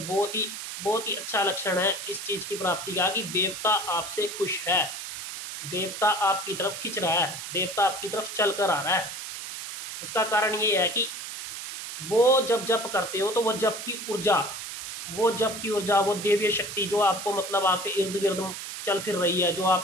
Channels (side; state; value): right; noise; hiss, 8 dB below the sound